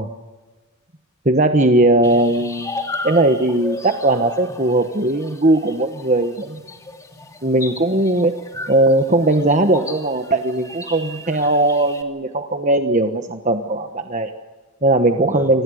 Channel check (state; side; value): normal; both; correlation 0.22